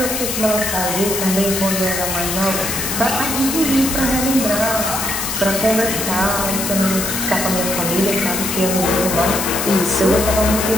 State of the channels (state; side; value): noise; left; hiss, 3 dB below the sound